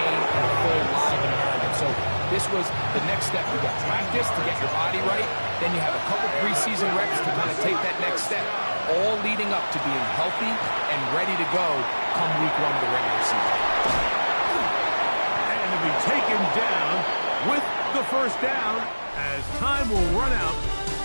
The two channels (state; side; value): inverted; both; correlation -1.00